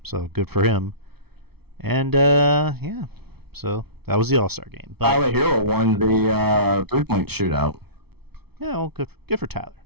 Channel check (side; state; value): left; late; 0.97 ms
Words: So good for him. And yeah, so that was the All-Star game. But Tyler Hero won the 3-point shootout. yeah, well, good for Tyler.